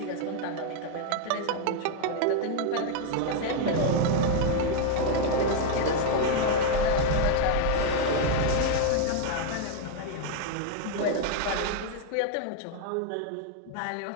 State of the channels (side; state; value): both; different; correlation 0.00